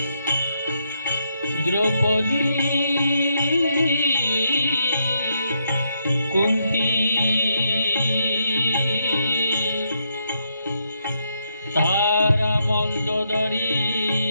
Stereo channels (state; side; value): inverted; both; correlation -0.78